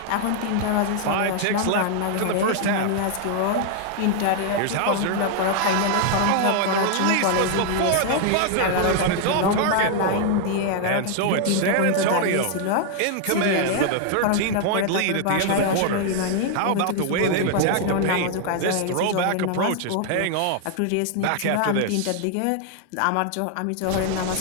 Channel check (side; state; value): both; different; correlation 0.00